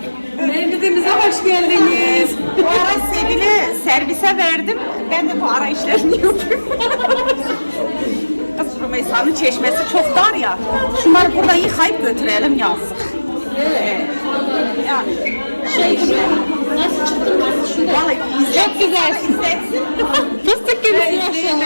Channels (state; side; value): inverted; both; correlation -1.00